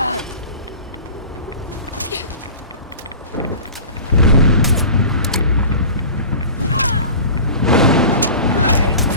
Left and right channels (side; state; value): both; inverted; correlation -0.38